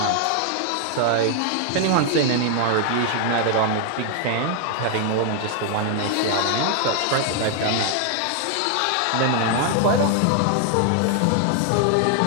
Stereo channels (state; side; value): different; both; correlation 0.00